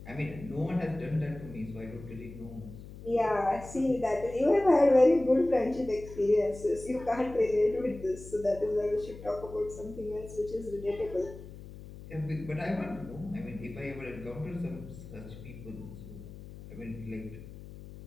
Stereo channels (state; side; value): noise; left; hum, 15 dB below the sound